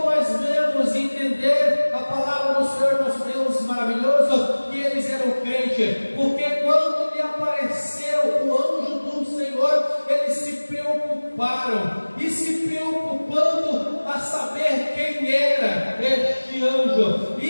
nós devemos entender a palavra do Senhor nosso Deus maravilhoso, que eles eram crentes? Porque quando lhe apareceu o anjo do Senhor, eles se preocuparam, e se preocupando a saber quem era este anjo,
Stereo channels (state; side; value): inverted; both; correlation -1.00